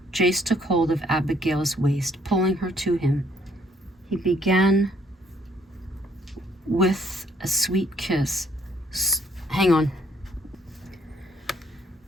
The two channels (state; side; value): normal; both; correlation 0.67